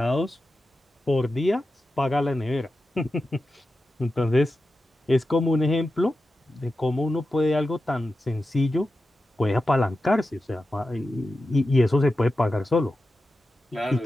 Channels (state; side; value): normal; both; correlation 0.92